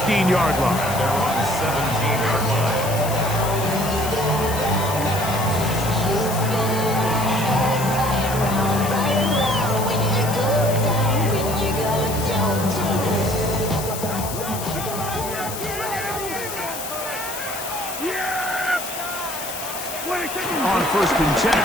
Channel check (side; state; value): left; noise; hiss, 8 dB below the sound